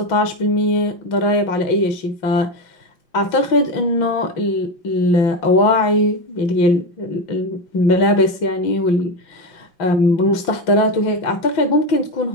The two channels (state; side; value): late; right; 6.1 ms